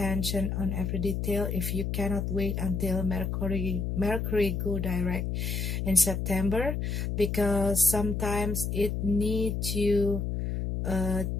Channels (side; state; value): left; noise; hum, 1 dB below the sound